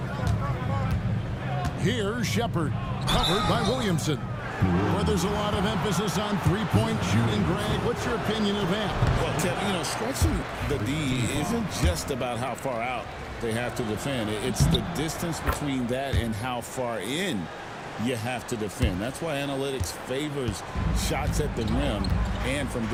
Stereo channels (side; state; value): both; identical; correlation 1.00